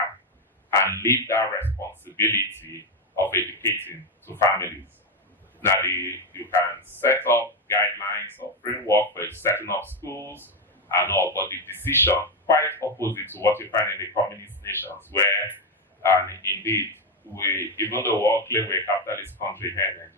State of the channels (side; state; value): both; normal; correlation 0.08